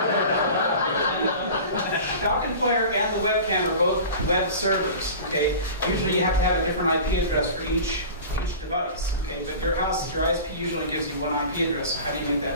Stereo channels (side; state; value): both; inverted; correlation -0.37